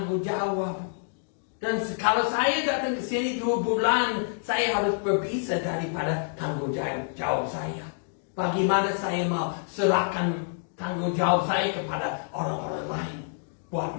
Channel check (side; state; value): right; silent; digital silence